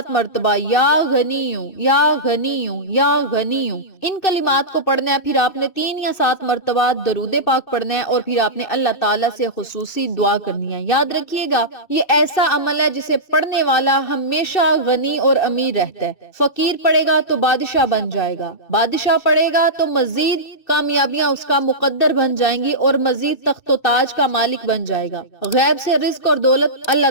مرتبہ یا غنیوں یا غنیوں یا غنیوں ان کلمات کو پڑھنا ہے۔ پھر آپ نے 3 یا 7 مرتبہ درود پاک پڑھنا ہے، اور پھر آپ نے اللہ تعالیٰ سے خصوصی دعا کرنی ہے۔ یاد رکھیے گا یہ ایسا عمل ہے جسے پڑھنے والا ہمیشہ غنی اور امیر رہتا ہے۔ فقیر پڑھے گا تو بادشاہ بن جائے گا، بادشاہ پڑھے گا تو مزید کامیابیاں اس کا مقدر بن جائیں گی، اور مزید تخت و تاج کا مالک بن جائے گا۔ غیب سے رزق اور دولت اللہ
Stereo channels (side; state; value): right; late; 2.6 ms